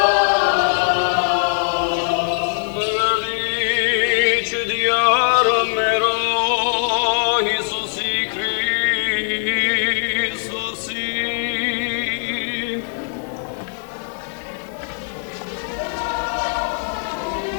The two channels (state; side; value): silent; right; digital silence